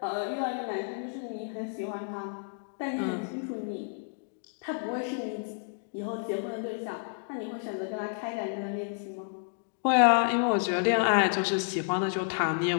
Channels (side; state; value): right; silent; digital silence